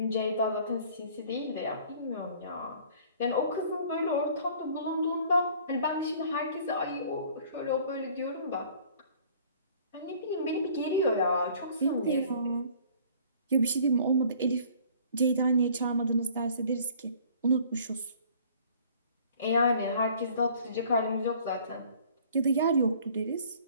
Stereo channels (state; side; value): inverted; both; correlation -0.53